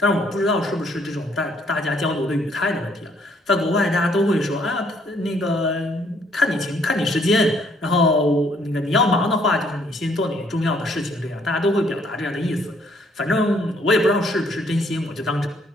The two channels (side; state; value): both; normal; correlation 0.66